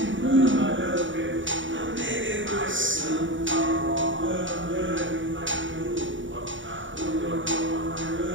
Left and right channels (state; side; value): late; left; 0.56 ms